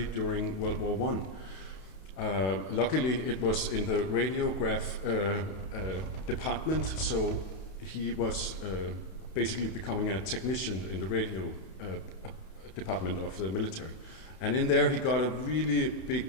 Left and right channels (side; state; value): right; late; 31 ms